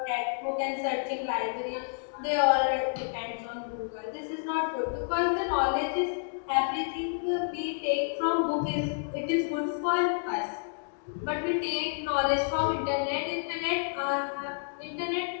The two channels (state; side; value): silent; right; digital silence